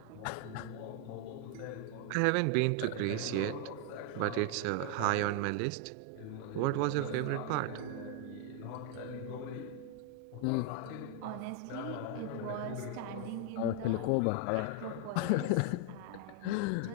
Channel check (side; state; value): both; different; correlation 0.00